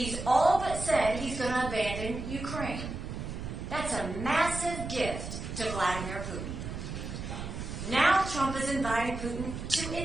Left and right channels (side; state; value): right; noise; rumble, 7 dB below the sound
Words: all but said he's going to abandon Ukraine. That's a massive gift to Vladimir Putin. Now Trump is inviting Putin to